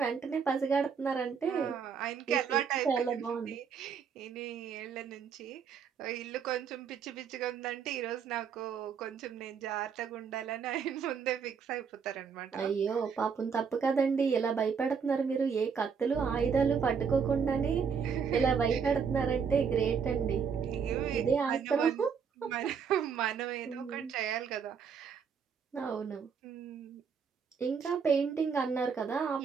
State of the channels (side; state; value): left; quieter; 6.4 dB